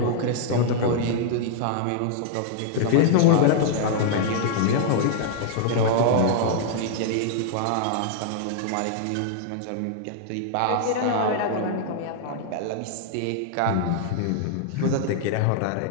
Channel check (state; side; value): different; both; correlation -0.01